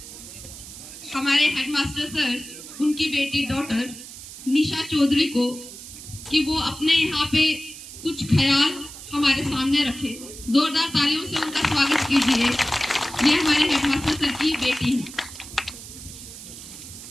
हमारे headmaster sir उनकी बेटी डॉटर निशा चौधरी को कि वो अपने यहाँ पे कुछ ख्याल हमारे सामने रखे। जोरदार तालियों से उनका स्वागत कीजिए। ये हमारे हेडमास्टर सर की बेटी है।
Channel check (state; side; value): noise; right; hiss, 14 dB below the sound